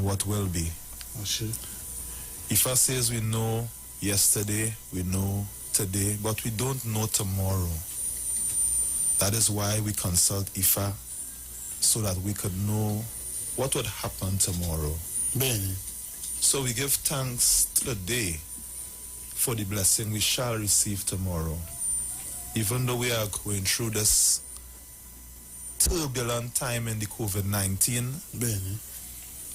what will be. Ifa says we know yesterday, we know today, but we don't know tomorrow. That is why we consult Ifa, so that we could know what would happen tomorrow. So we give thanks to the day for the blessing we shall receive tomorrow. Even though we are going through this turbulent time in the COVID-19,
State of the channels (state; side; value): identical; both; correlation 1.00